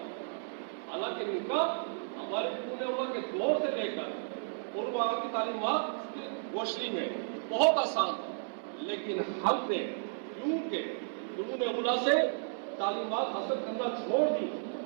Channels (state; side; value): silent; left; digital silence